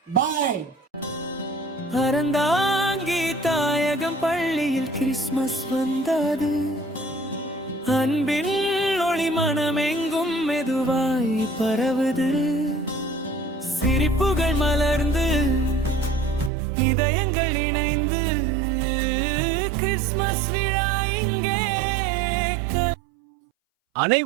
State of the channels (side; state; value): left; drops out; at 16.5 s